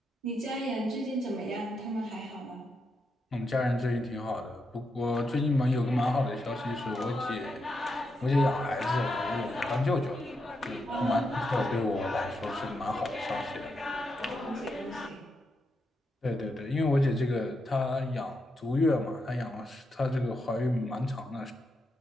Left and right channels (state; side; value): normal; both; correlation 0.83